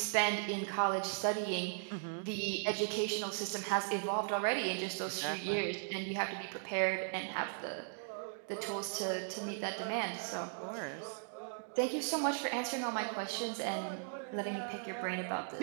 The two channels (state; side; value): silent; left; digital silence